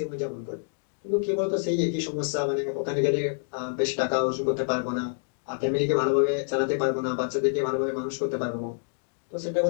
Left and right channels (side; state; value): right; silent; digital silence